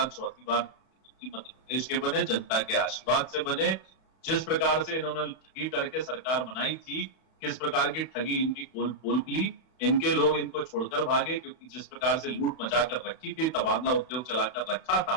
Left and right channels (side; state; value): right; late; 31 ms